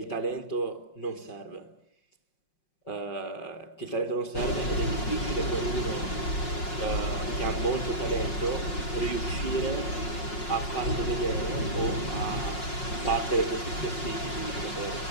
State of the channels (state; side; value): late; right; 5.5 ms